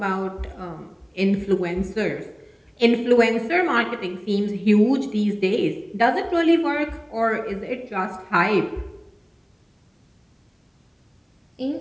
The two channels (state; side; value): identical; both; correlation 1.00